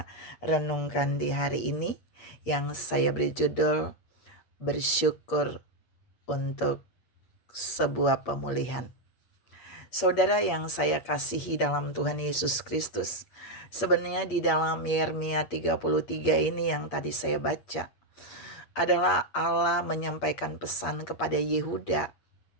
renungkan di hari ini, yang saya beri judul bersyukur untuk sebuah pemulihan. Saudara yang saya kasihi dalam Tuhan Yesus Kristus, sebenarnya di dalam Yeremia 33 ini yang tadi saya baca, adalah Allah menyampaikan pesan kepada Yehuda,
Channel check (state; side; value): late; right; 8.5 ms